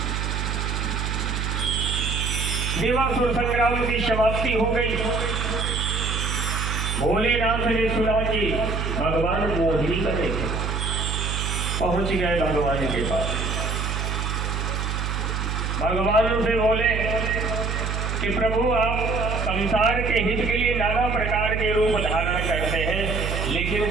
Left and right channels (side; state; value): right; noise; hum, 1 dB below the sound